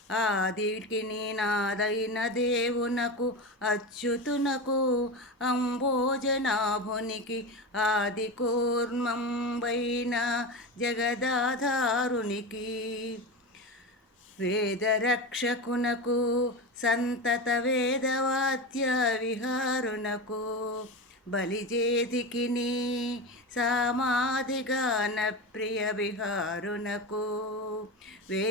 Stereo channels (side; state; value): both; normal; correlation 0.22